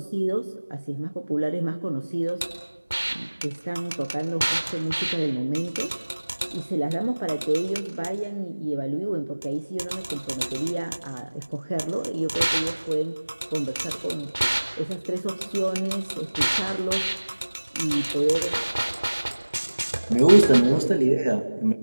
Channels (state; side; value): inverted; both; correlation -1.00